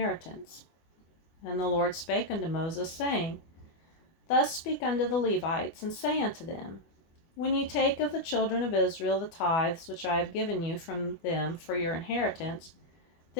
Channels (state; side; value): late; right; 24 ms